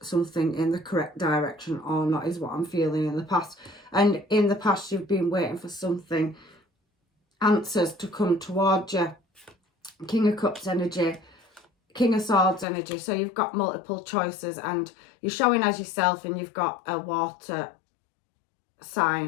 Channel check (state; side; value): drops out; right; at 12.7 s